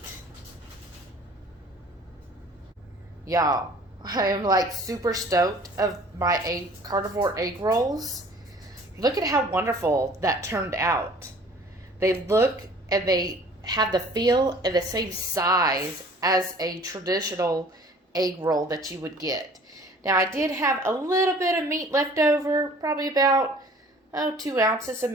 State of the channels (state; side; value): normal; both; correlation 0.50